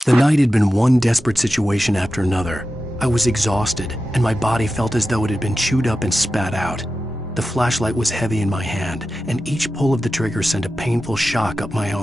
The night had been one desperate situation after another. I was exhausted, and my body felt as though it had been chewed up and spat out. The flashlight was heavy in my hand, and each pull of the trigger sent a painful shock up my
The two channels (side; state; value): both; normal; correlation 0.92